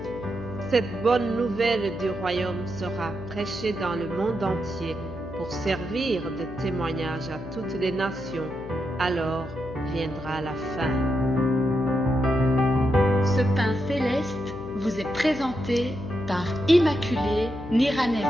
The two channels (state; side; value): noise; left; hum, 12 dB below the sound